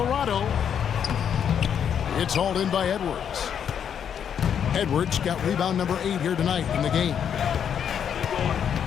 It's hauled in by Edwards. Edwards got rebound number 8 here tonight in the game.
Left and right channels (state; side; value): quieter; right; 8.3 dB